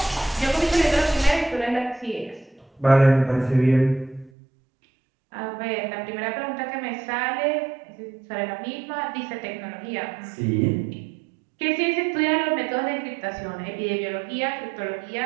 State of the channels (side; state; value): left; drops out; at 4.3 s